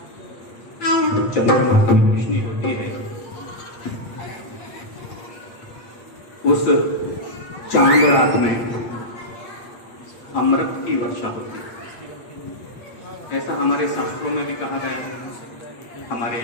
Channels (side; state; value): right; late; 8.4 ms